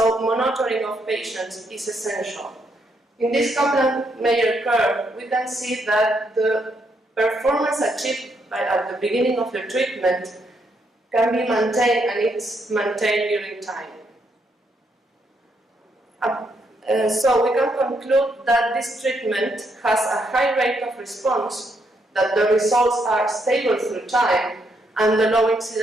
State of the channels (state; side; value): normal; both; correlation 0.76